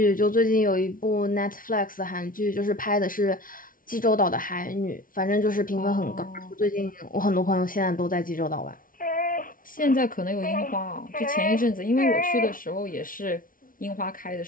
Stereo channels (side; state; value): right; late; 0.40 ms